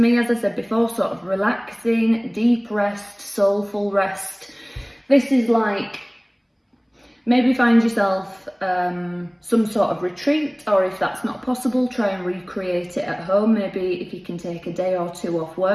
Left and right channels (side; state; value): both; identical; correlation 1.00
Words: me, as I said before, sort of relaxing, deep rest, soulful rest. This is like, maybe find yourself some sort of retreat, or if that's not possible, try and recreate it at home. Maybe if you can take a day or two off